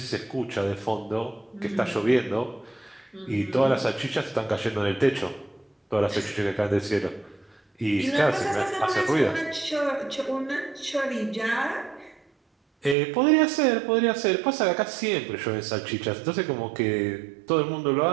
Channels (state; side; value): drops out; left; at 13.0 s